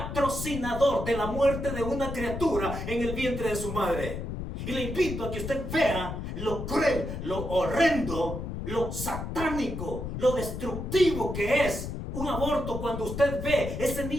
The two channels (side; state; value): left; noise; rumble, 6 dB below the sound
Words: de la muerte de una criatura en el vientre de su madre. Y le invito a que usted vea lo cruel, lo horrendo, lo satánico, lo destructivo que es un aborto cuando usted ve ese